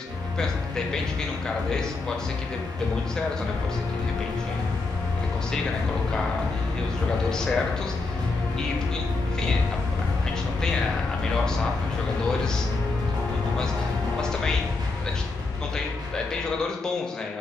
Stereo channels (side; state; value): right; quieter; 3.6 dB